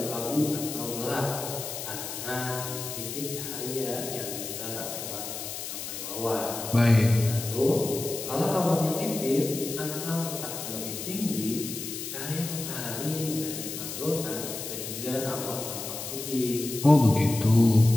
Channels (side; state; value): left; noise; hiss, 7 dB below the sound